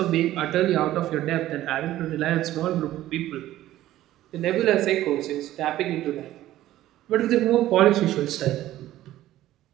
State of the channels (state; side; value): quieter; left; 14.3 dB